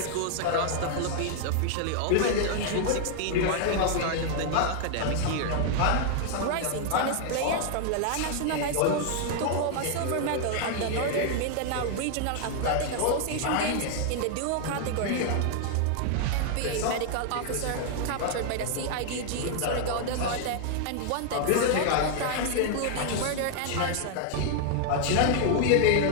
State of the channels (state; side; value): different; both; correlation 0.00